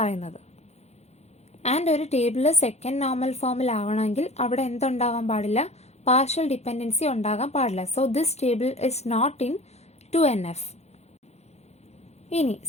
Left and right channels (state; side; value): late; right; 0.31 ms